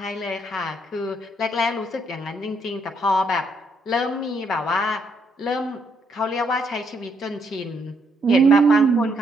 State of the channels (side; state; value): both; normal; correlation 0.73